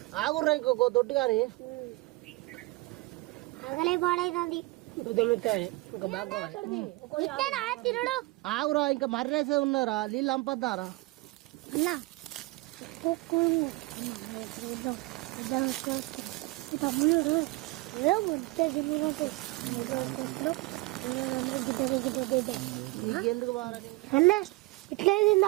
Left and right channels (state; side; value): quieter; left; 22.7 dB